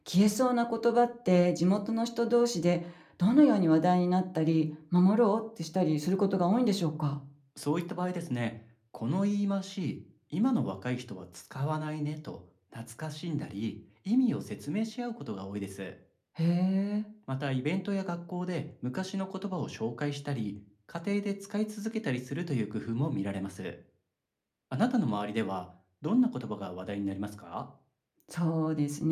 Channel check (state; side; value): identical; both; correlation 1.00